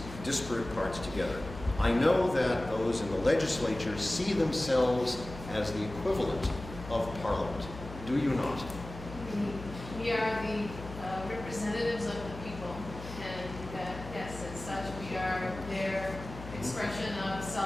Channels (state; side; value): noise; left; hum, 12 dB below the sound